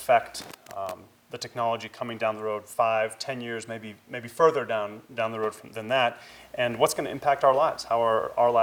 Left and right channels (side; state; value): both; identical; correlation 1.00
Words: the technology coming down the road 5, 10 years, maybe further down the road than that, and what's going to impact our lives, how are our